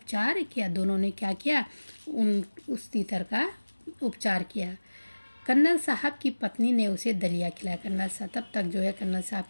किया। दोनों ने क्या किया, उस तीतर का उपचार किया। कर्नल साहब की पत्नी ने उसे दलिया खिलाया। कर्नल साहब तब तक जो है कर्नल साहब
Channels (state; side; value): inverted; both; correlation -1.00